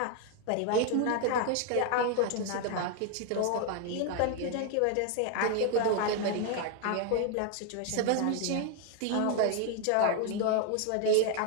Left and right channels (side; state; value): both; different; correlation 0.00